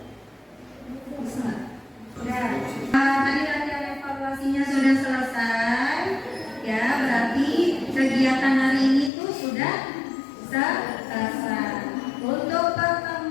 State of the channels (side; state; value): right; drops out; at 9.1 s